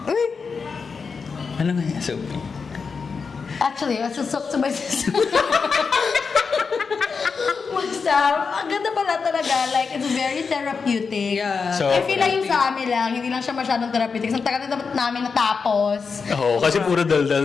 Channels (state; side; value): quieter; right; 5.2 dB